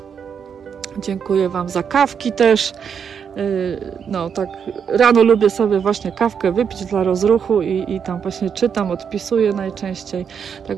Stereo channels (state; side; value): quieter; left; 7.2 dB